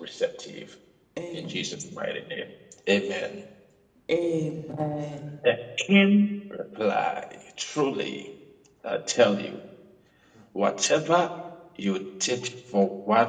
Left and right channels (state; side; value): identical; both; correlation 1.00